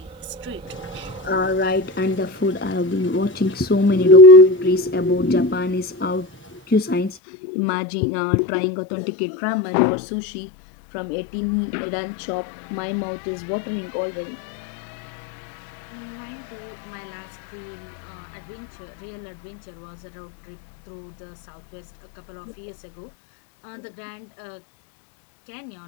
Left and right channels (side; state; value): right; drops out; at 7.2 s